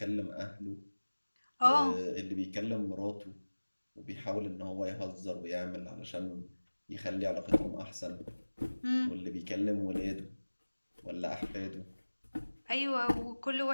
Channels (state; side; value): inverted; both; correlation -1.00